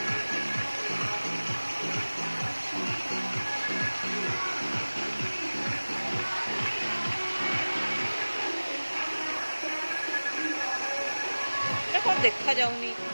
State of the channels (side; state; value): both; inverted; correlation -1.00